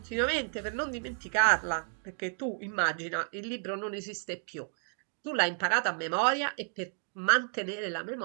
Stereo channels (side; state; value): left; silent; 57 dB below the other